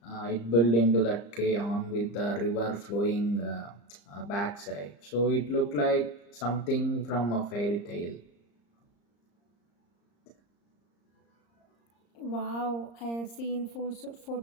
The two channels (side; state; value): right; late; 34 ms